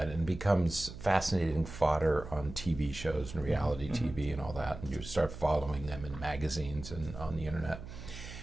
and becomes fascinating fodder on TV shows and reality TV and all that, and you start following them in magazines and on the internet.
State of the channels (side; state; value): right; noise; hum, 12 dB below the sound